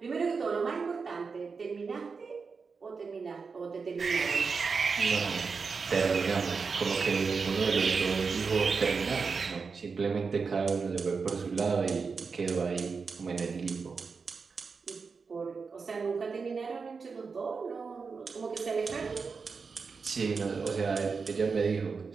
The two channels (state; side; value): quieter; left; 5.0 dB